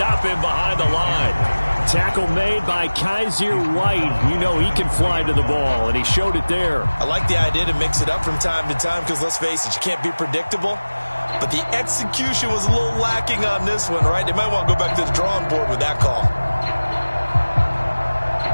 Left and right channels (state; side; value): inverted; both; correlation -1.00